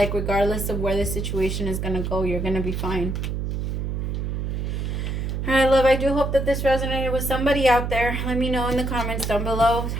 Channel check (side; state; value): right; noise; hum, 2 dB below the sound